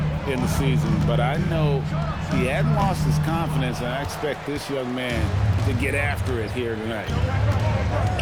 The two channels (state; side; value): identical; both; correlation 1.00